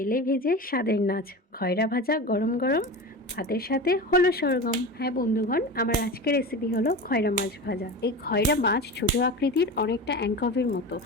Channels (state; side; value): normal; both; correlation 0.28